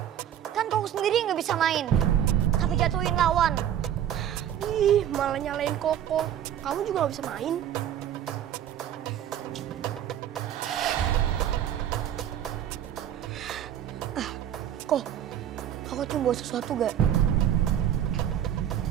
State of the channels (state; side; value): quieter; left; 10.4 dB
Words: Kan Koko sendiri nggak bisa main. Tapi jatuhin lawan. Ih, malah nyalain Koko. Kamu juga nggak bisa main. Kok, Koko cium bawa sesuatu gak?